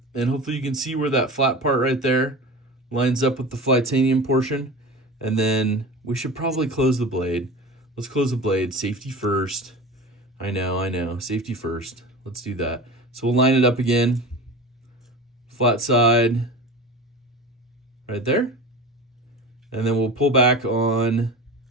and hopefully you can see where that flat part right there lines up with the Flytanium portion. And then we should probably close the blade. Let's close the blade. Safety first. I know. Safety first. Let's do that. So we'll line it up again. Flat side right there. And then we'll pull back on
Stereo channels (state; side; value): normal; both; correlation 0.33